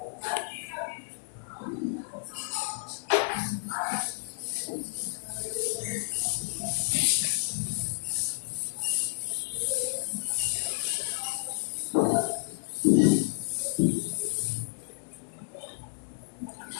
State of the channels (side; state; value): right; silent; digital silence